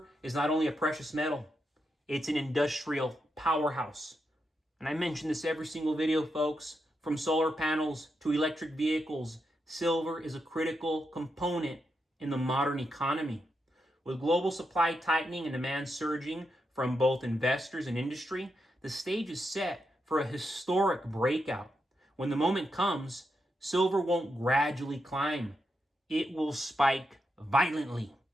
is not only a precious metal, it's an industrial powerhouse. And I mention this every single video, folks. From solar panels to electric vehicles, silver is a critical component in the modern economy. With global supply tightening and demand surging from both investors and industry, the stage is set for a historic breakout. When the moment comes, silver won't gradually climb. It will spike violently.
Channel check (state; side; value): normal; both; correlation 0.84